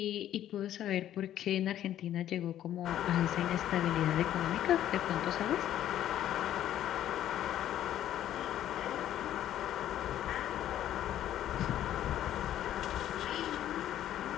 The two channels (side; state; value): right; quieter; 11.8 dB